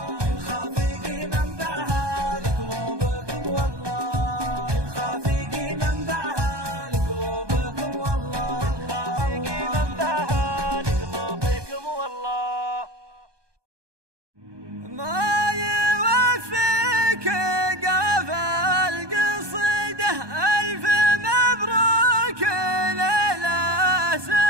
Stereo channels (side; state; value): left; late; 1.2 ms